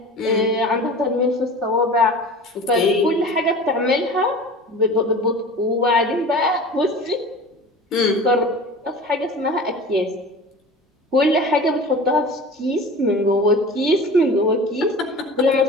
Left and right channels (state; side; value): normal; both; correlation 0.38